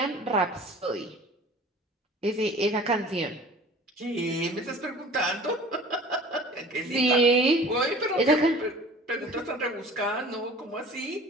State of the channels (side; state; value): both; normal; correlation 0.45